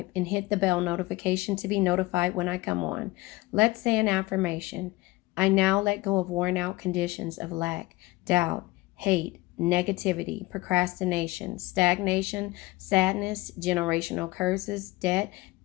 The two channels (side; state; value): right; quieter; 20.6 dB